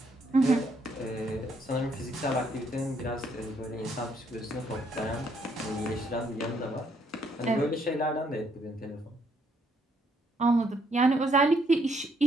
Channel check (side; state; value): both; normal; correlation 0.71